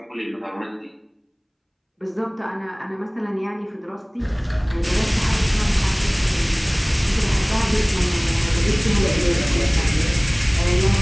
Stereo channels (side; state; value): both; identical; correlation 1.00